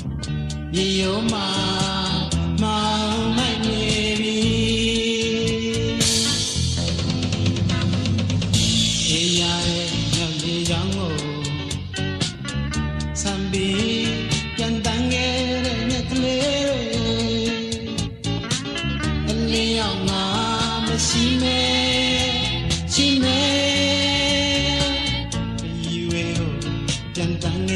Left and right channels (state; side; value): identical; both; correlation 1.00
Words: ရောမမောင်မိုက်နေပြီအေးရရဲ့ညမြေရောင်းကိုစံပြီးပြန်တန်းခဲ့တဲ့ညကလေးအလင်းရောက်ငါမရှိမဲရှိမဲဒီဝေကိုပြန်တန်းခ